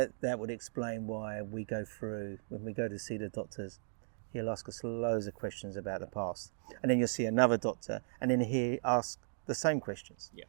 would explain why we go through, when we go to see the doctors, he'll ask us loads of questions about the past. And then you'll see another doctor, and then he'll ask the same questions.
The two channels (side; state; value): left; silent; digital silence